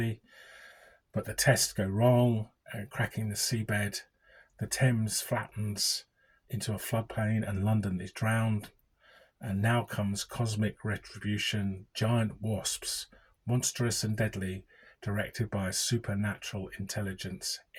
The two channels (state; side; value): identical; both; correlation 1.00